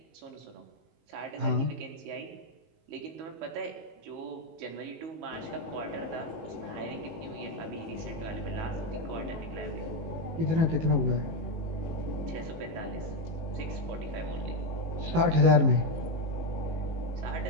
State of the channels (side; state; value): left; late; 19 ms